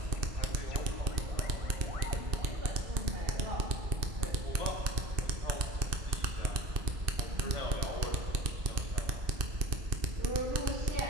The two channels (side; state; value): left; late; 2.5 ms